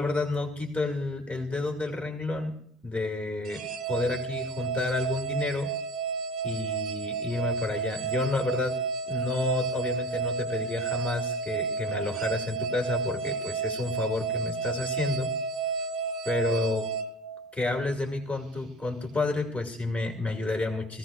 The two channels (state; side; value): normal; both; correlation 0.40